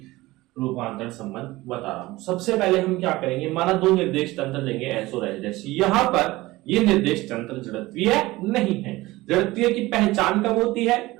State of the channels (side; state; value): left; quieter; 19.2 dB